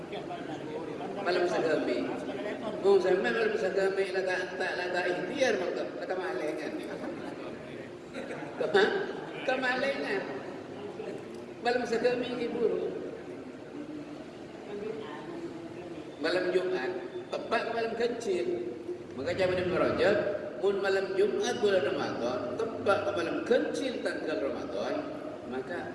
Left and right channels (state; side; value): identical; both; correlation 1.00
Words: Malam sagami. Oh, sampai malam sagami tak ikhtiar makna kemalengan. Kemalengan. Malam sagami iburu. Malam Jumat tepat malam kecil. Maka zaman Ibnu Rajab, mun malam Jumat bulan Ramadan tepat malam kecil tanggal Ramadan, maka